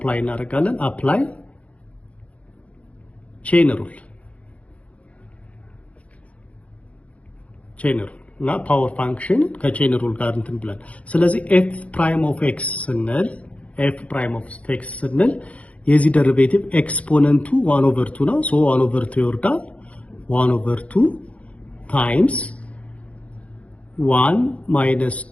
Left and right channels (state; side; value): late; right; 0.065 ms